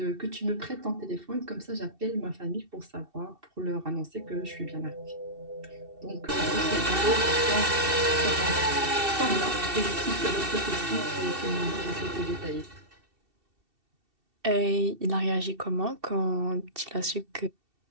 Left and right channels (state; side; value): late; left; 2.7 ms